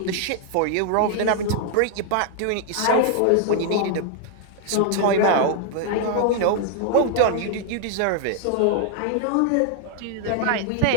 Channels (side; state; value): both; different; correlation 0.00